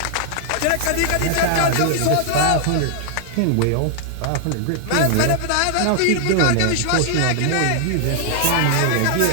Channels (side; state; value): both; different; correlation -0.01